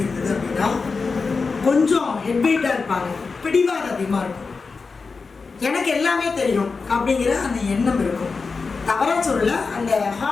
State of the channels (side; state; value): right; quieter; 4.6 dB